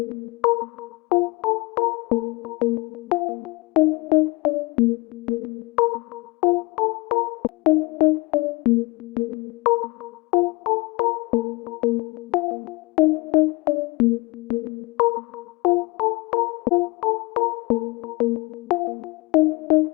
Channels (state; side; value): quieter; right; 24.6 dB